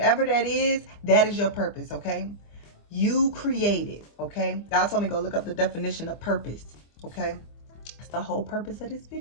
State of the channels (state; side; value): late; right; 25 ms